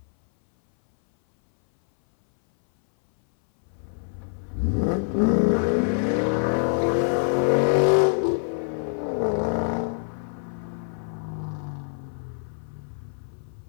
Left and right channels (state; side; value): silent; right; 60 dB below the other